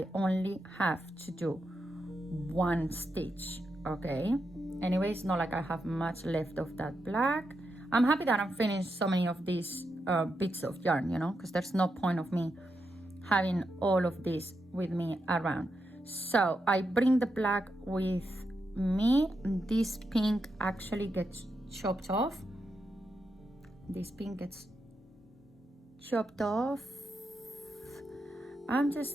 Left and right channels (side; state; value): both; normal; correlation 0.85